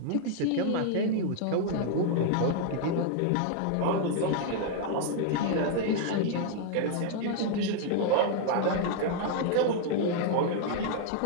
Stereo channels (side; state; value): both; different; correlation 0.00